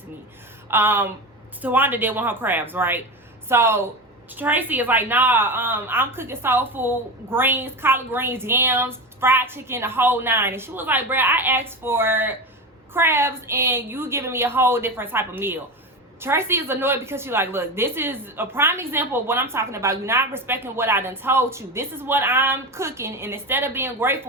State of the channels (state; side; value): normal; both; correlation 0.22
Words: to me. Towanda did want her crabs, right? So Traci is like, nah, I'm cooking soul food, greens, collard greens, yams, fried chicken, the whole nine. And she was like, bruh, I asked for crabs and you giving me a whole different type of meal. Traci is annoyed because she's like, look, this is a prime example of what I'm talking about. You're not respecting what I done told you. This is what I'm cooking, and instead of being